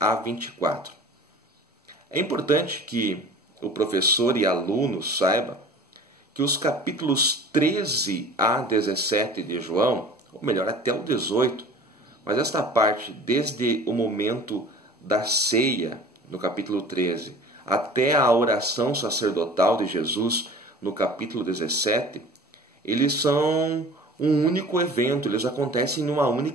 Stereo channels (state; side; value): normal; both; correlation 0.43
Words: 24. É importante que o professor e aluno saiba que os capítulos 13 a 17 de João, ou melhor, até o 18, mas esta parte, desde o momento da ceia, no capítulo 13, até a oração sacerdotal de Jesus, no capítulo 17, eles são um único evento, eles acontecem numa